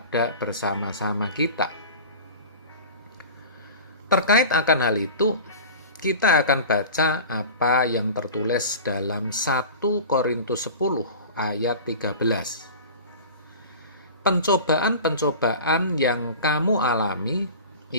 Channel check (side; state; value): both; inverted; correlation -0.36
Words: bersama-sama kita. Terkait akan hal itu, kita akan baca apa yang tertulis dalam 1 Korintus 10 ayat 13. Pencobaan-pencobaan yang kamu alami